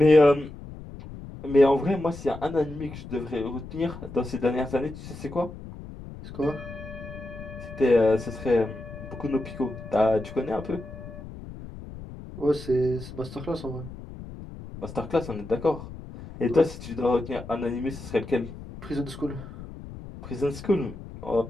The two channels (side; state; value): left; noise; rumble, 13 dB below the sound